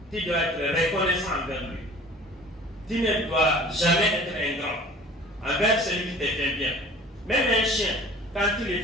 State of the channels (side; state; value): both; normal; correlation 0.46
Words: tu dois être reconnaissant envers lui. Tu ne dois jamais être ingrat envers celui qui te fait bien. Même un chien, quand il le